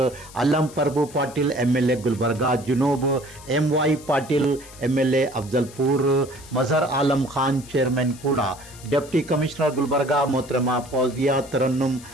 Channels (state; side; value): noise; left; hiss, 19 dB below the sound